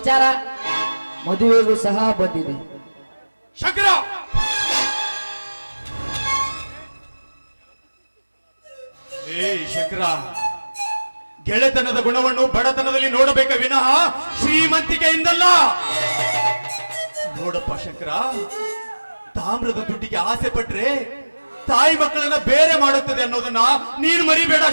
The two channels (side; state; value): both; inverted; correlation -1.00